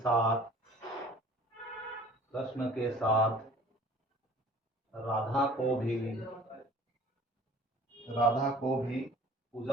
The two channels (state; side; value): normal; both; correlation 0.48